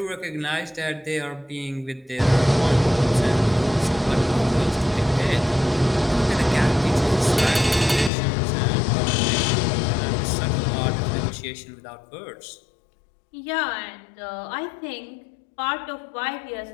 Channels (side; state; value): right; drops out; at 8.1 s